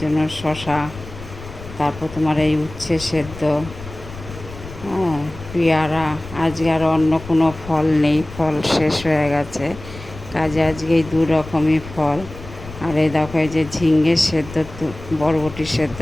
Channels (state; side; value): noise; left; rumble, 15 dB below the sound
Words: শসা, তারপর তোমার এই উচ্ছে সেদ্ধ, হ্যাঁ, পেয়ারা। আজকে আর অন্য কোনো ফল নেই, ফল শেষ হয়ে গেছে, কাজে আজকে এই দু রকমই ফল। আর এই দেখো, এই যে ঝিঙ্গে সেদ্ধ, বরবটি সেদ্ধ